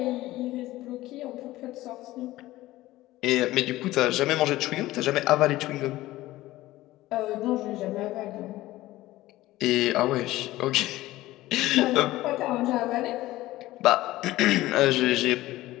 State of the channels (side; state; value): right; quieter; 16.9 dB